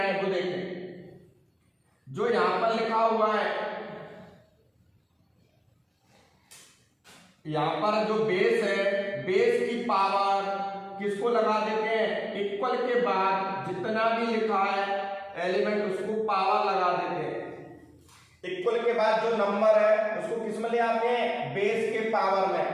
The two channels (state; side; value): identical; both; correlation 1.00